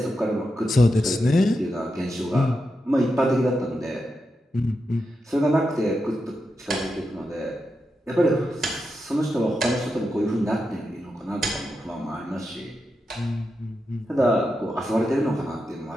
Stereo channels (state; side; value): normal; both; correlation 0.87